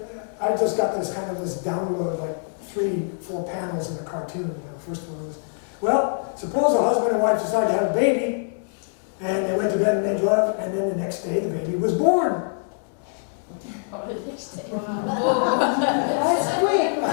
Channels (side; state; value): right; silent; digital silence